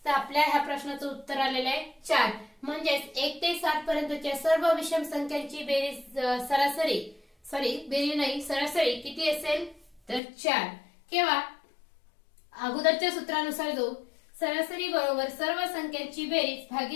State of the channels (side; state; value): right; drops out; at 10.2 s